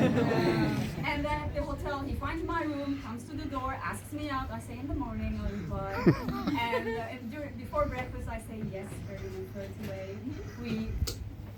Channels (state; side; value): identical; both; correlation 1.00